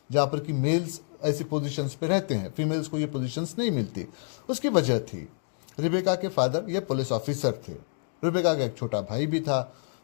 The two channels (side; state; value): right; silent; digital silence